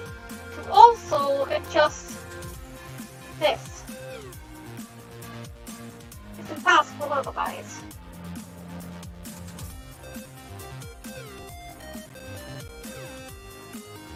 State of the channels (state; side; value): identical; both; correlation 1.00